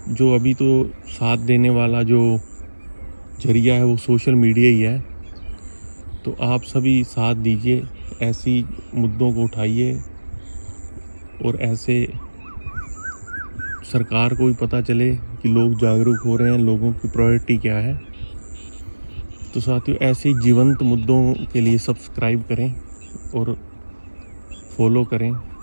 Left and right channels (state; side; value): inverted; both; correlation -1.00